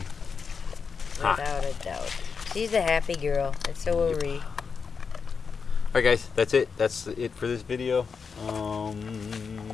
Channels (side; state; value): right; quieter; 5.6 dB